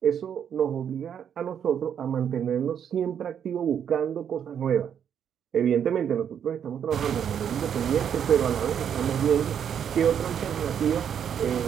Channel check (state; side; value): quieter; left; 8.5 dB